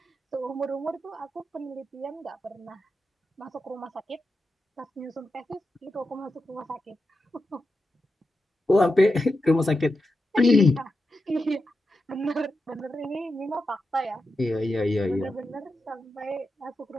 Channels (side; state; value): both; normal; correlation 0.89